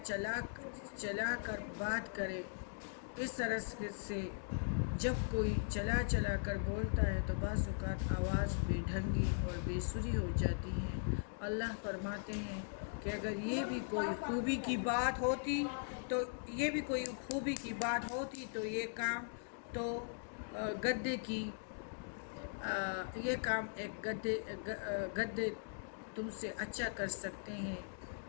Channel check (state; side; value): silent; right; digital silence